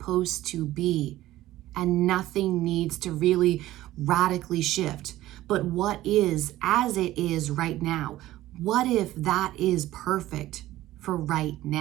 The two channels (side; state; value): left; quieter; 15.4 dB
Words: to be and nothing needs to really radically shift? But what is as it is right now? What if that is perfect for right